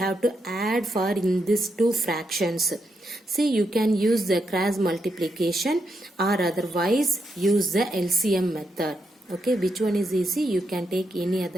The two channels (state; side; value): normal; both; correlation 0.82